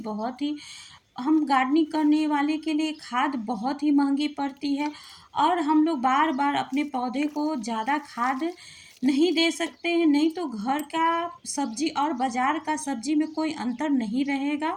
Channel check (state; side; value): identical; both; correlation 1.00